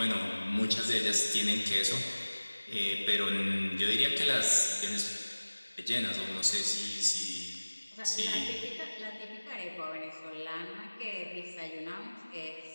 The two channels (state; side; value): inverted; both; correlation -1.00